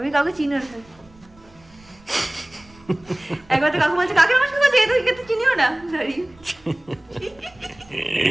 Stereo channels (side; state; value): right; noise; rumble, 27 dB below the sound